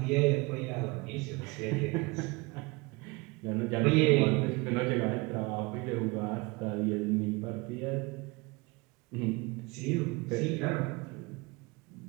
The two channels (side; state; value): left; quieter; 25.7 dB